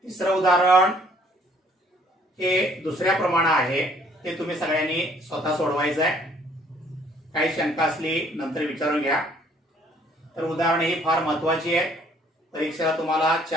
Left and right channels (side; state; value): both; normal; correlation 0.61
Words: तिसरं उदाहरण हे दुसऱ्या प्रमाणे आहे. ते तुम्ही सगळ्यांनी स्वतः सोडवायचं आहे. काही शंका असली नंतर विचारून घ्या. तर उदाहरण ही फार महत्त्वाची आहे. परीक्षेला तुम्हाला